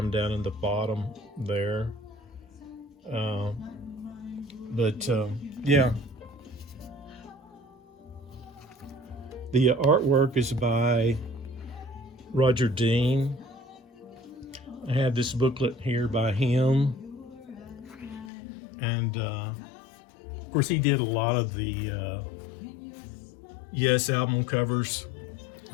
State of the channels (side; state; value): right; drops out; at 18.3 s